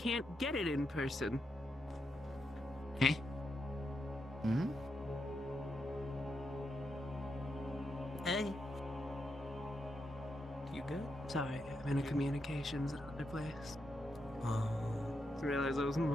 get it in person. Hey? Hmm? Hey. You good? Sorry, I'm in a communications at another place. Oh. Just realized I was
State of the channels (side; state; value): both; normal; correlation 0.83